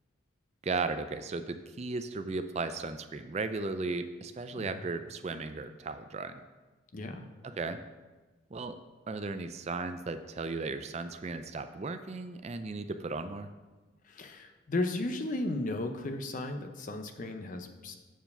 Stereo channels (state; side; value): normal; both; correlation 0.40